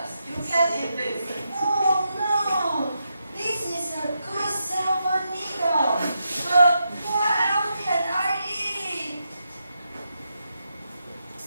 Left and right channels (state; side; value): inverted; both; correlation -0.84